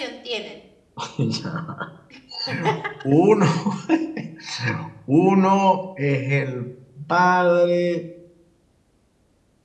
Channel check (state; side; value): identical; both; correlation 1.00